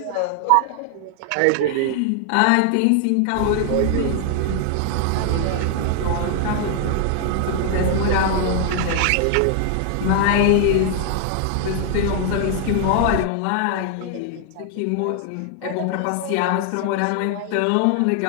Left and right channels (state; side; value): different; both; correlation 0.00